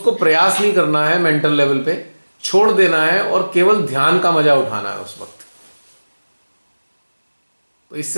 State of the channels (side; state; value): both; inverted; correlation -1.00